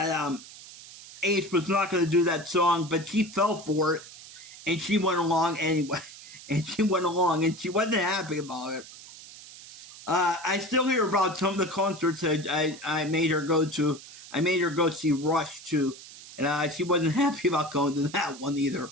Ace was not going to do that song, but she fell for it, and she went along anyway. And she went along, and she wasn't happy about it. I still hear about some of the concerts that I made her go to. I made her go see Rush, too. And she wasn't happy about going to that one either.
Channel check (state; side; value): noise; right; hiss, 17 dB below the sound